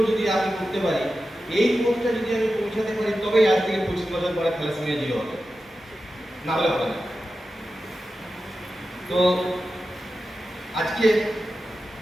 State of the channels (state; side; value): normal; both; correlation 0.92